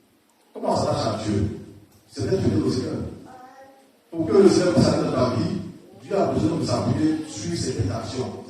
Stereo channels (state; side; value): identical; both; correlation 1.00